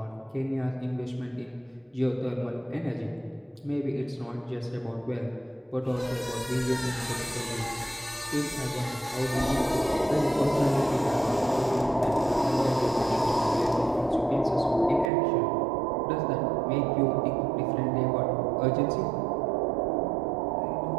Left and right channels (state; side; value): drops out; left; at 15.1 s